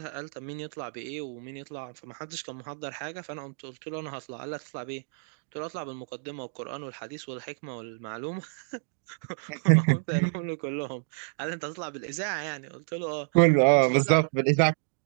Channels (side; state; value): left; silent; digital silence